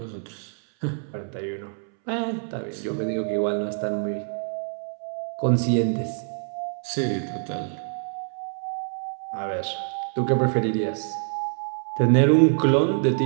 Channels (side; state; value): left; silent; 61 dB below the other